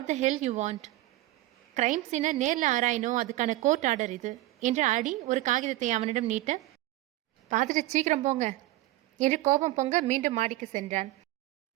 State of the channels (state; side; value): quieter; left; 17.3 dB